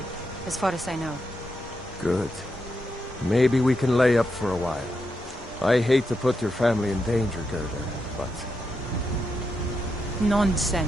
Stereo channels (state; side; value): normal; both; correlation 0.84